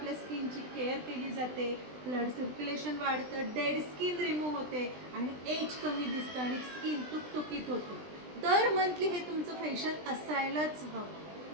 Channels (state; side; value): late; left; 20 ms